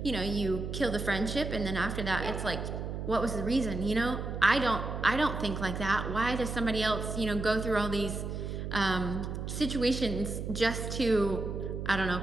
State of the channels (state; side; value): noise; right; hum, 5 dB below the sound